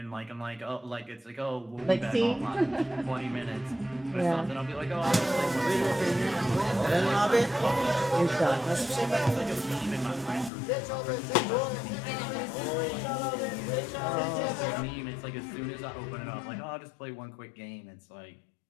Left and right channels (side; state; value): right; drops out; at 10.5 s